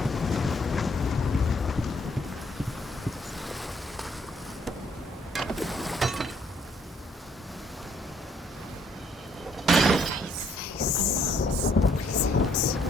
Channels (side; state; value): both; normal; correlation 0.67